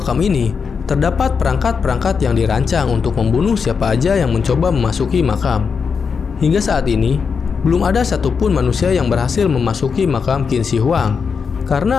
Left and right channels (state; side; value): quieter; right; 5.8 dB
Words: ini terdapat perangkat-perangkat yang dirancang untuk membunuh siapa aja yang mencoba memasuki makam. Hingga saat ini, belum ada satupun manusia yang berhasil memasuki makam Qin Shi Huang